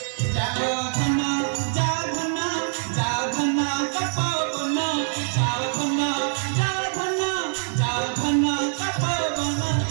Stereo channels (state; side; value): silent; left; 56 dB below the other